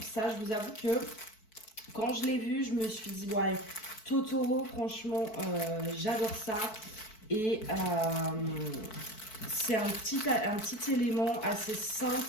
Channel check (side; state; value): right; late; 4.6 ms